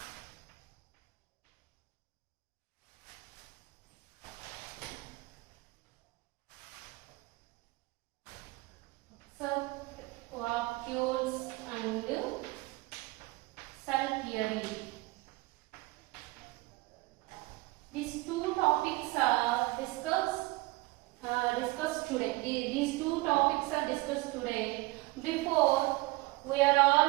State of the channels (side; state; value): left; quieter; 22.3 dB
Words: vacuoles and cell theory. These two topics are discussed today. These two topics are discussed today. Before we are